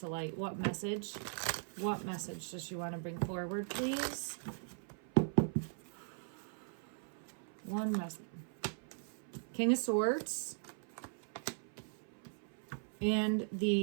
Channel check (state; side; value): silent; left; 51 dB below the other